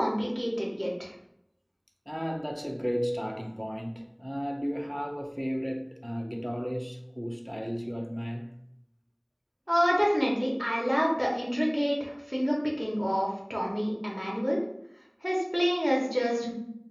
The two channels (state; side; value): identical; both; correlation 1.00